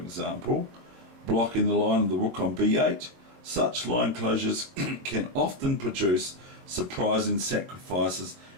blocking the line of the rook on B8, such line closures can often produce surprising sacrifices,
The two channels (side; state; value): left; late; 23 ms